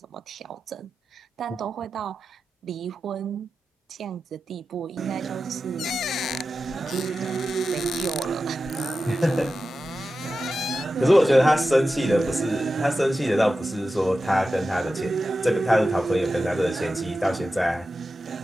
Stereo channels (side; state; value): both; normal; correlation 0.92